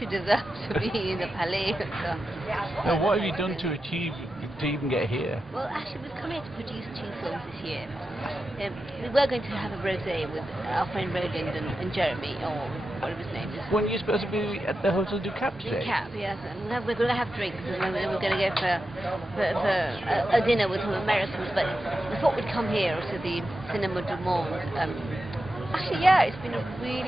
deserve to be in the Palais. So. Now, what have you done to achieve to even get here? Well, actually, we've come here to produce 2 films this year. We were going to have a rosé with our friend Roland and Jeremy, or whatever his name is. When you're supposed to be at the Hotel du Cap today? Du Cap, yes. And we're going to have drinks, and then we're going to go for a dinner with some Americans. But we thought we'd come here to the Cinema du Monde Actually, yeah, it's been a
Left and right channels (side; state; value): both; normal; correlation 0.90